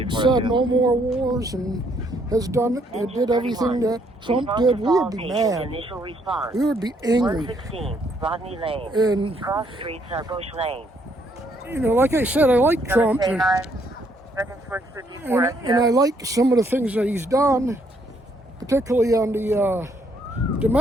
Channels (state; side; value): normal; both; correlation 0.69